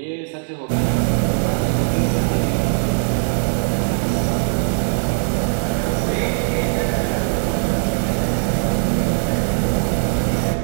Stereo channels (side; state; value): left; silent; 62 dB below the other